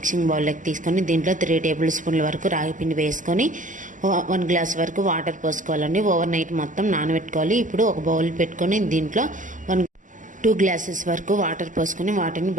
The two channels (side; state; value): left; late; 0.37 ms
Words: బౌల్లోకి తీసుకొని దీంట్లో 3 టేబుల్ స్పూన్ల వరకు రాగి పిండి వేసుకొని 1 గ్లాస్ వరకు వాటర్ పోసుకోవాలండి. ఓవర్ నైట్ మొత్తం నానబెట్టుకోవాలి. ఇప్పుడు ఒక బౌల్ పెట్టుకొని దీంట్లో 2 గ్లాసెస్ వరకు వాటర్ పోసుకొని వాటిని